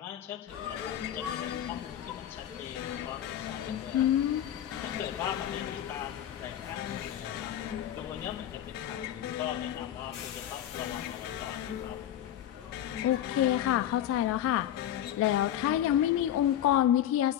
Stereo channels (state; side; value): quieter; right; 11.3 dB